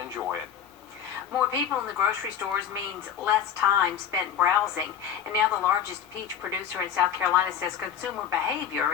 it. More people in the grocery stores means less time spent browsing. And now the largest peach producer in South Carolina says consumer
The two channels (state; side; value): quieter; right; 8.8 dB